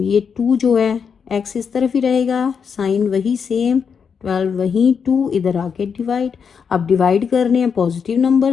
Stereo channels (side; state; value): right; quieter; 6.5 dB